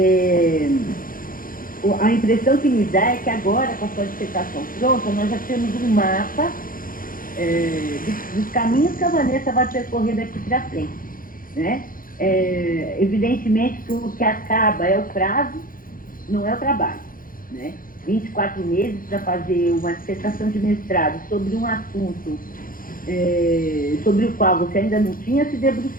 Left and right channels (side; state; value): right; late; 0.41 ms